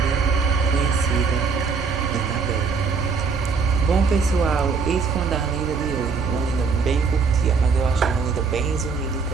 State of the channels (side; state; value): left; quieter; 5.1 dB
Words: conhecida Annabelle. Bom, pessoal, isso foi a lenda de hoje. Uma lenda bem curtinha, mas eu acho uma lenda bem resumida e